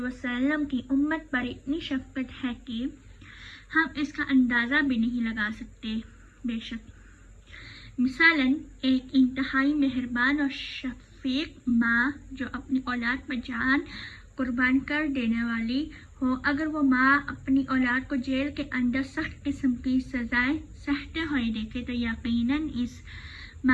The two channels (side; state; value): both; identical; correlation 1.00